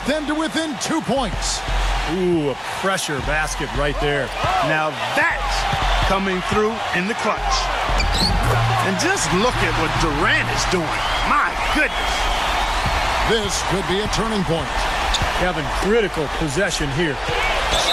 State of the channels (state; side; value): identical; both; correlation 1.00